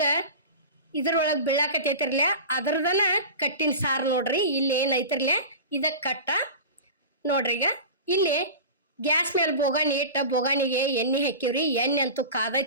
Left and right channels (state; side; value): inverted; both; correlation -0.31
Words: ಇದ್ರೊಳಗೆ ಬೀಳಾಕತ್ತೈತಿರ್ಲ ಅದ್ರದನ ಕಟ್ಟಿನ ಸಾರು ನೋಡ್ರಿ. ಇಲ್ಲಿ ಏನೈತಿರ್ಲ ಇದ ಕಟ್ಟ ನೋಡ್ರಿ. ಈಗ ಇಲ್ಲಿ ಗ್ಯಾಸ್ ಮೇಲೆ ಬೋಗಾಣಿ ಇಟ್ಟ ಬೋಗಾಣಿಗೆ ಎಣ್ಣೆ ಹಾಕಿವ್ರಿ. ಎಣ್ಣೆ ಅಂತೂ